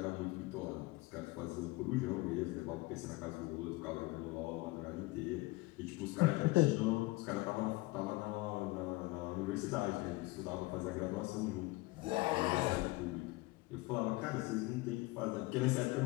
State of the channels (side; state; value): right; quieter; 21.5 dB